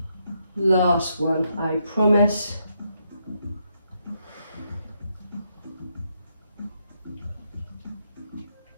Last one, I promise.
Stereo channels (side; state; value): both; inverted; correlation -0.79